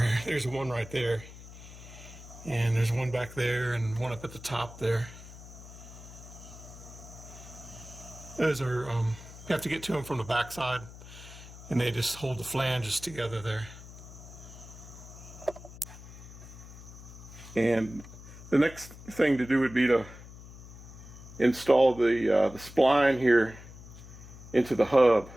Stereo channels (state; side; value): noise; left; hum, 16 dB below the sound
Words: one right there, and there's one back there and one up at the top there. Those are, you have to get to them from the back side, and they just hold the flanges together there. And the next thing to do would be to install the spline here into the hub.